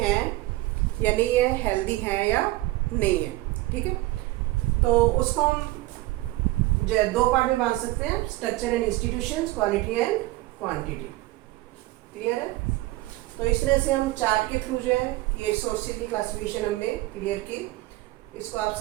या नहीं है, हेल्दी हैं या नहीं है। ठीक है, तो उसको हम जो दो पार्ट में बांध सकते हैं, structure and institutions, quality and quantity. Clear है? तो इस तरह से हम चार्ट के थ्रू जो है ये रिसोर्सेज की क्लासिफिकेशन हमने क्लियर की। इसको आप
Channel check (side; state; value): left; quieter; 18.9 dB